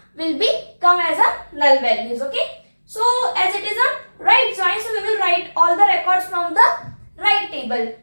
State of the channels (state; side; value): inverted; both; correlation -1.00